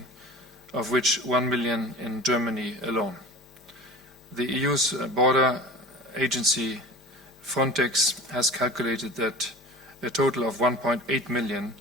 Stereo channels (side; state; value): both; normal; correlation 0.37